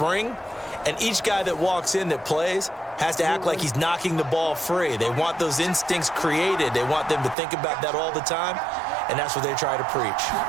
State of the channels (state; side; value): drops out; left; at 7.4 s